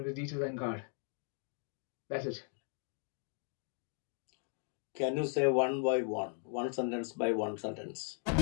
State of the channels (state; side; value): silent; right; 53 dB below the other